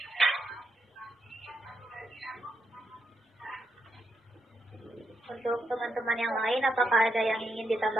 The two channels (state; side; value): normal; both; correlation 0.81